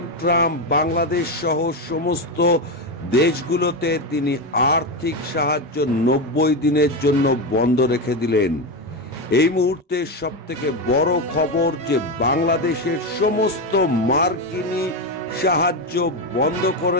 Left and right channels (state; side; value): normal; both; correlation 0.12